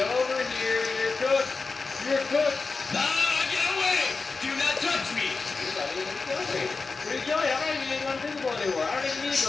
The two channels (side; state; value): right; quieter; 4.2 dB